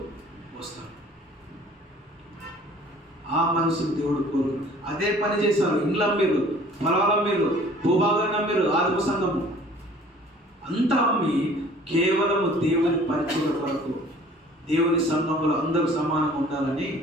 వస్తాడు. ఆ మనసును దేవుడు కోరు. అదే పని చేశారు. ఇండ్ల మీరు, పొలాల మీరు, భూభాగాన్ని మీరు, ఆదిమ సంఘము అంతా అమ్మి కేవలము దేవుని పరిచయ కొరకు, దేవుని సంఘములో అందరూ సమానంగా ఉండాలని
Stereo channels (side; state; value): both; normal; correlation 0.51